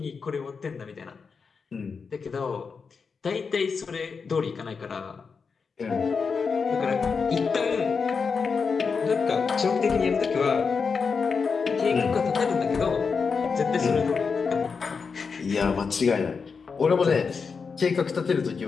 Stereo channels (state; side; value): quieter; right; 5.3 dB